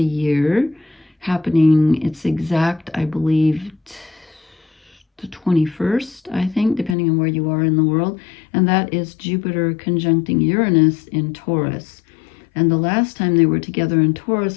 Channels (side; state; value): right; drops out; at 7.0 s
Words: year happening. It's exact, I believe, the 21st, I think, depending on where you are in the world, and that is Jupiter conjuncting Uranus in Taurus. And the last time they were together in